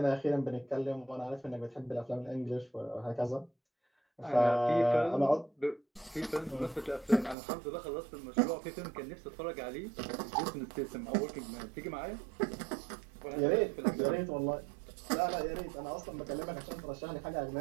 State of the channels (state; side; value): drops out; left; at 7.4 s